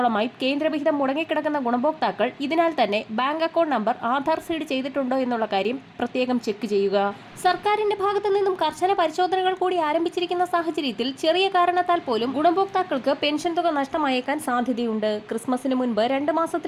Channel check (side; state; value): both; identical; correlation 1.00